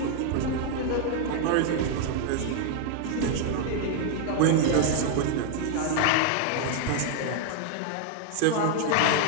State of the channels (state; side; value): different; both; correlation 0.00